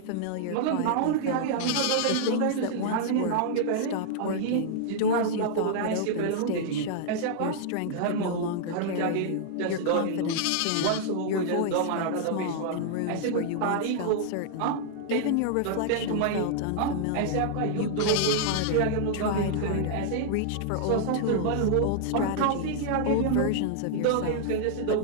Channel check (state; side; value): different; both; correlation -0.01